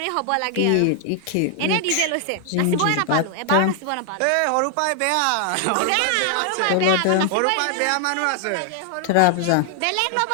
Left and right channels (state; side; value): different; both; correlation 0.00